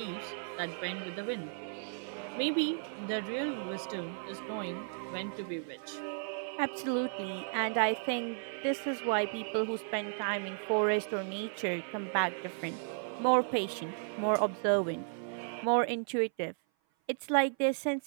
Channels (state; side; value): silent; left; 55 dB below the other